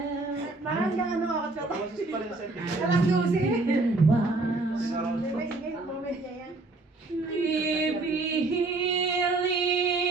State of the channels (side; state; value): left; quieter; 3.3 dB